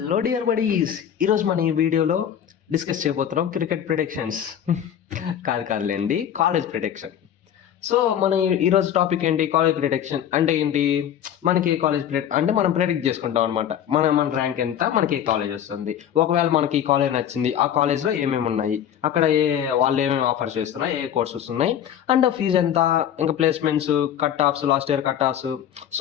dear buddies, ఈరోజు మన ఈ వీడియోలో డిస్కస్ చేయబోతున్నాం క్రికెట్ ప్రిడిక్షన్స్. కాదులేండి, కాలేజ్ ప్రిడిక్షన్. సో మన ఈరోజు టాపిక్ ఏంటి? కాలేజ్ ప్రిడిక్షన్ అంటే ఏంటి? మనకి కాలేజ్ అంటే మనం ప్రిడిక్ట్ చేసుకుంటాం అనమాట. మన ర్యాంక్ ఎంత, మనకి ఏ కాలేజ్ వస్తుంది. ఒకవేళ మనకి ఈ కాలేజ్ నచ్చింది, ఆ కాలేజ్లో ఏమేమి ఉన్నాయి, అక్కడ వాళ్ళు ఏమేమి ఆఫర్స్ చేస్తున్నారు, ఏ కోర్సెస్ ఉన్నాయి, అండ్ ఫీజు ఎంత, ఇంకా placements, cut offs, last year cut offs.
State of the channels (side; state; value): right; quieter; 9.8 dB